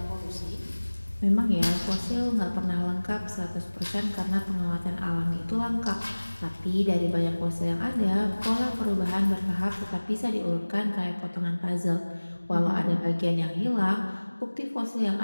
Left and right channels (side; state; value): both; inverted; correlation -1.00